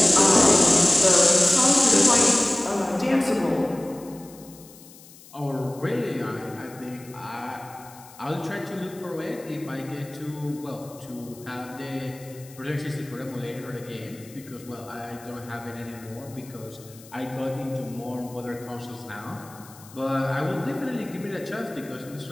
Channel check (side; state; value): left; noise; hiss, 21 dB below the sound